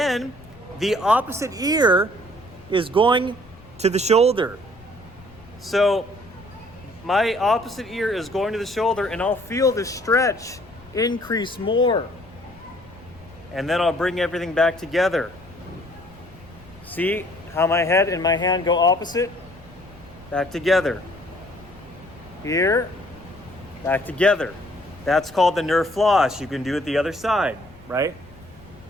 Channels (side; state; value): left; noise; rumble, 23 dB below the sound